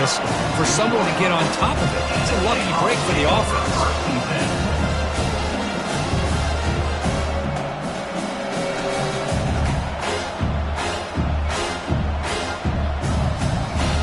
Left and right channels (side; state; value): both; identical; correlation 1.00